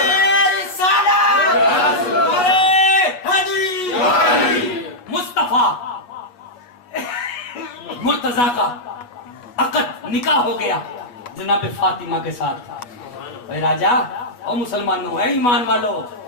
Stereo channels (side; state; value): right; late; 8.1 ms